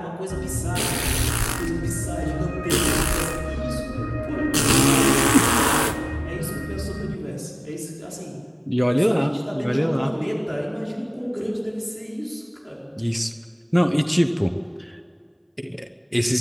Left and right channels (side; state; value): both; identical; correlation 1.00